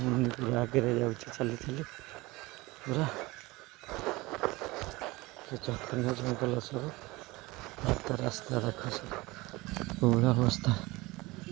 ମୁନି ପୁରା ଆଗରେ ଯାଉଛି ଚାଲି ଚାଲି ପୁରା ଏ ଜଘନ୍ୟ ଜଙ୍ଗଲ ସବୁ ରାସ୍ତା ଦେଖ ସବୁ କୋଉଭଳିଆ ଅବସ୍ଥା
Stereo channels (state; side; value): quieter; left; 21.8 dB